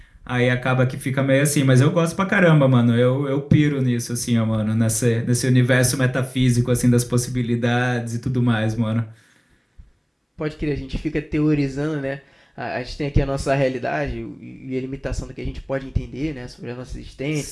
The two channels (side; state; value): both; identical; correlation 1.00